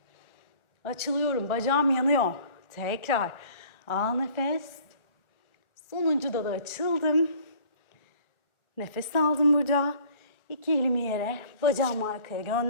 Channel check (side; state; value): right; late; 1.4 ms